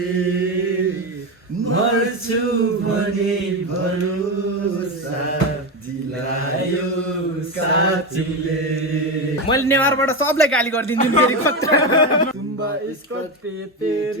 मर्छु भने भरोसा दिलायो साथीले। मैले नेवारबाट सबलाई गाली गरिदिन्छु फेरि तुम्बा इसको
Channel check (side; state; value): both; normal; correlation 0.15